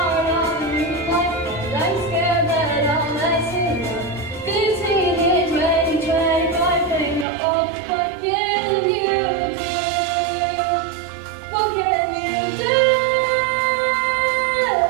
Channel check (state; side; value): drops out; left; at 7.2 s